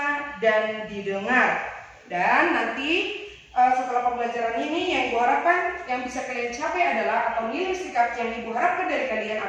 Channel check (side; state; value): both; identical; correlation 1.00